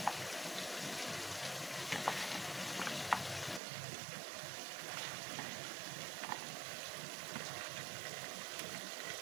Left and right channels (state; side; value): drops out; left; at 3.6 s